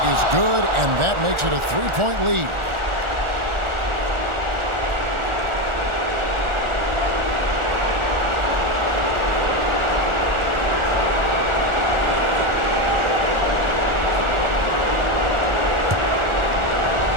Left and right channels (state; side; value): late; left; 1.4 ms